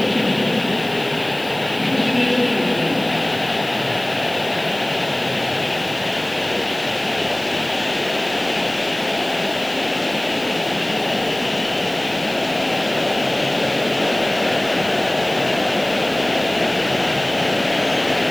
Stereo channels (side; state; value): left; noise; hiss, 18 dB below the sound